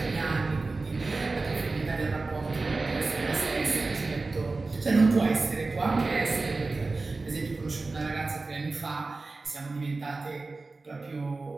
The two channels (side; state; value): left; quieter; 3.6 dB